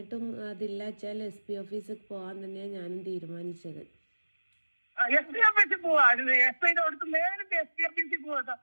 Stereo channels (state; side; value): inverted; both; correlation -1.00